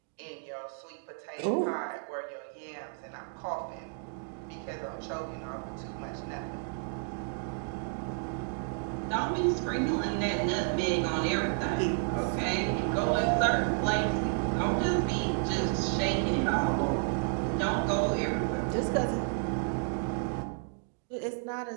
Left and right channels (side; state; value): left; silent; 57 dB below the other